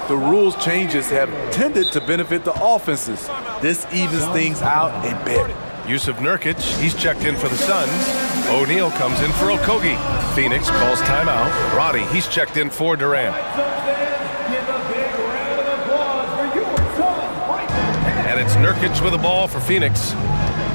the rules changes have tended to benefit the offenses. This evens things out a bit. Yusuf Nurkic, he's checked in for the Suns. O'Neal comes in for Okogie. Phoenix calls timeout. Roddy, he's checked in for Durant. And it's Nurkic with the ball for Phoenix.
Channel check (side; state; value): both; inverted; correlation -1.00